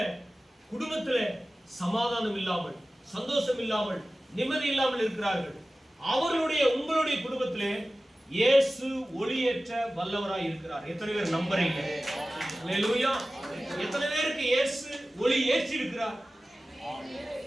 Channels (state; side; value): normal; both; correlation 0.96